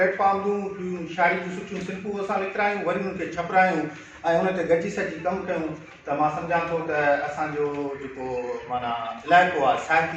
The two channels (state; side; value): identical; both; correlation 1.00